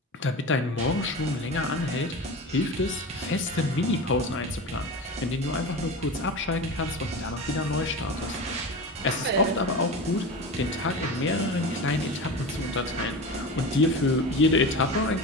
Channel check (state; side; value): normal; both; correlation 0.28